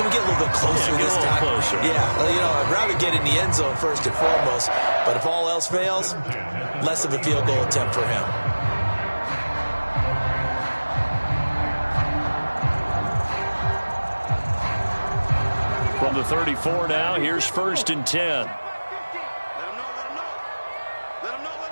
we get a little bit closer this time? Closer. Yeah, I'd rather get in the end zone first and foremost. But if all else fails, less of a field goal attempt for him. From the 34 now, here's 1st and 10. Let him know.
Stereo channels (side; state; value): both; inverted; correlation -1.00